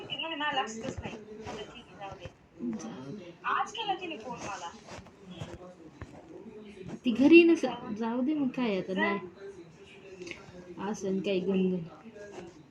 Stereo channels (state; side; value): identical; both; correlation 1.00